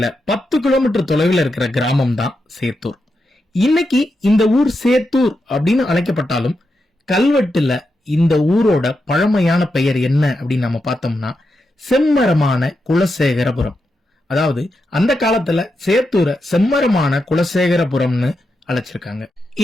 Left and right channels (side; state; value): both; normal; correlation 0.86